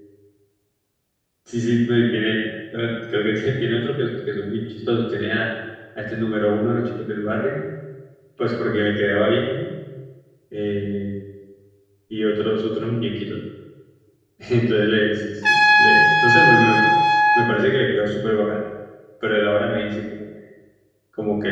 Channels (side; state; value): both; identical; correlation 1.00